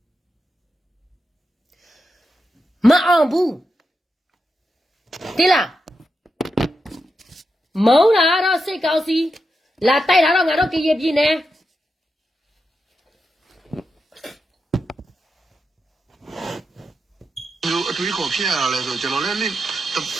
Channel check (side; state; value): both; normal; correlation 0.87